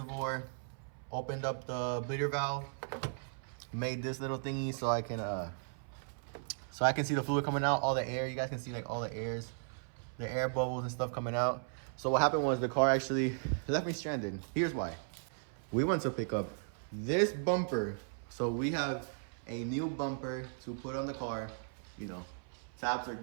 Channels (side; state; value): left; silent; 54 dB below the other